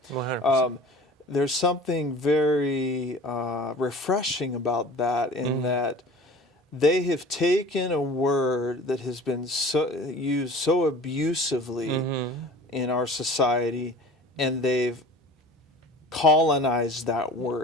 there's something very refreshing about that, in that they have taken a word that has been used so abusively in our society, and they've colonized that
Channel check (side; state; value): both; normal; correlation 0.42